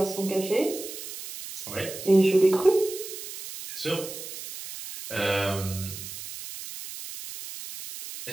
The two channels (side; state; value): right; noise; hiss, 10 dB below the sound